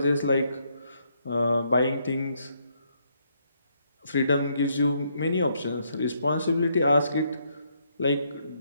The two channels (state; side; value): inverted; both; correlation -0.74